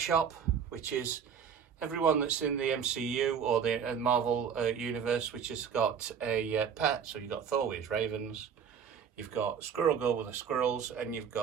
Shop, which is everyone that's in the MCU or the Marvel universe which has got a pet. So you've got Thor with his ravens, you've got Squirrel Girl with the squirrels, and you've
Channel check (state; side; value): quieter; left; 7.3 dB